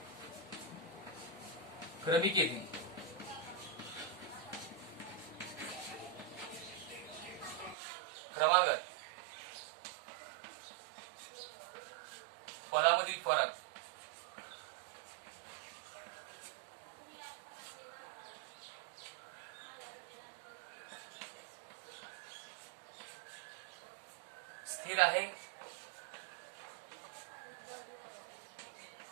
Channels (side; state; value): left; drops out; at 7.8 s